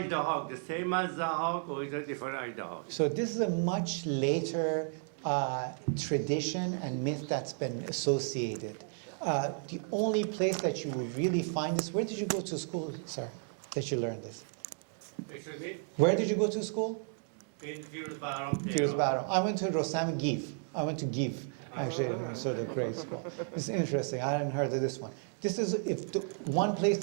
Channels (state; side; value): silent; left; 56 dB below the other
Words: the same as Zahak, or is it a different Ajdahak? So this is a much later tradition and myth that's been associated. The only place that you would really find this, where did you go to school, sir, that you learned this? Excuse me? Where did you go to school? In Syrus Baram. I went to Rosam Giv. I went to Giv, actually, sort of great school. It's interesting. I hadn't heard of this one. This is one place